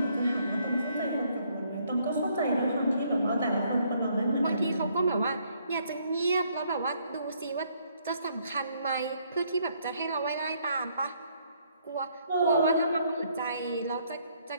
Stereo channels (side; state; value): both; inverted; correlation -0.68